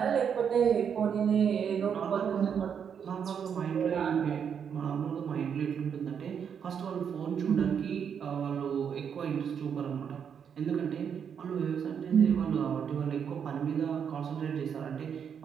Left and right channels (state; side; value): quieter; left; 7.5 dB